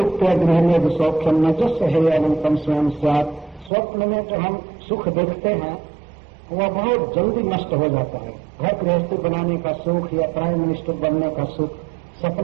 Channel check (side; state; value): left; drops out; at 3.7 s